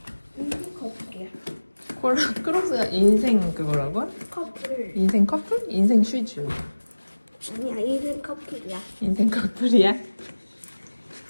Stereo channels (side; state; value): both; inverted; correlation -1.00